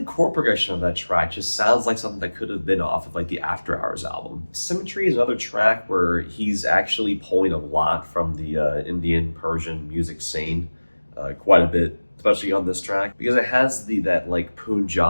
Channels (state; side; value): inverted; both; correlation -1.00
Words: chord progression of that track just sounds like something that could have been off of like the After Hours album. Symmetry is another track where he's actually pulling a lot from the Indian Persian music scene, quite a bit, especially on this track, because it has that like